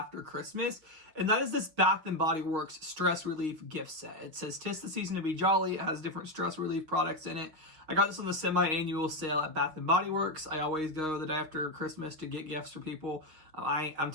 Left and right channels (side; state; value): left; late; 6.4 ms